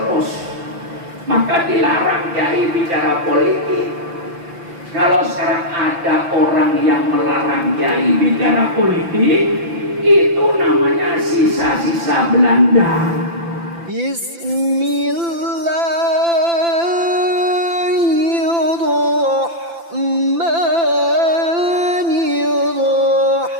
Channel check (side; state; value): left; late; 5.9 ms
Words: Maka dilarang kiai bicara politik. Kalau sekarang ada orang yang melarang kiai bicara politik, itu namanya sisa-sisa Belanda.